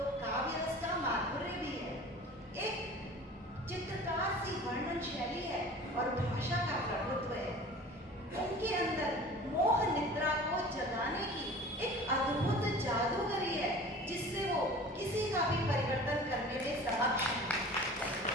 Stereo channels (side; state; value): both; normal; correlation 0.41